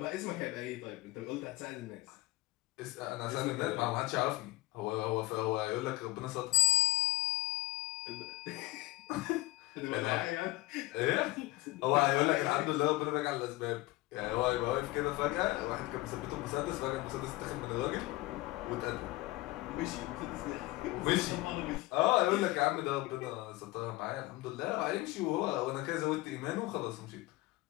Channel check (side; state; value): right; quieter; 19.3 dB